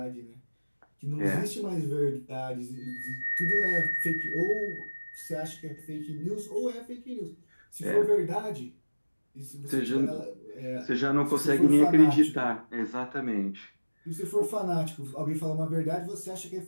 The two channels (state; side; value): inverted; both; correlation -1.00